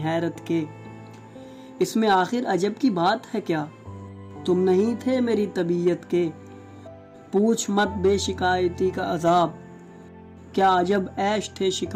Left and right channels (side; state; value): both; identical; correlation 1.00